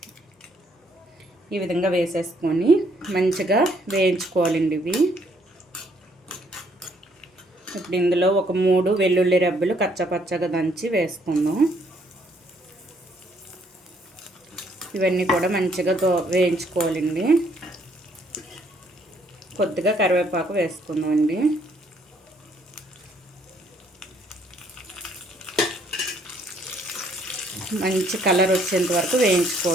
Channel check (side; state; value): both; normal; correlation 0.67